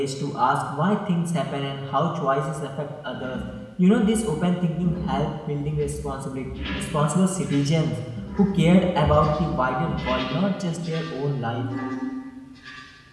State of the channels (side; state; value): both; identical; correlation 1.00